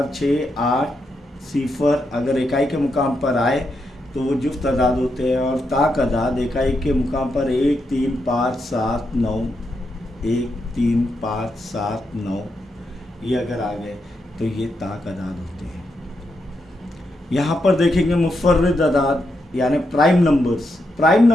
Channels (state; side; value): normal; both; correlation 0.83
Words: 6, 8 सिफर अगर इकाई के मुकाम पर आए तो वो जुफ्त अदाद होते हैं। और ताक अदाद इकाई के मुकाम पर 1, 3, 5, 7, 9, 1, 3, 5, 7, 9 ये अगर आ गए तो ये ताक अदाद होते हैं। यहाँ पर देखेंगे मुफर्रिद अदाद यानी प्राइम नंबर्स। प्राइम